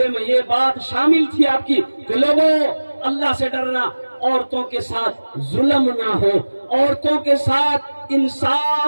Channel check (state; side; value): inverted; both; correlation -1.00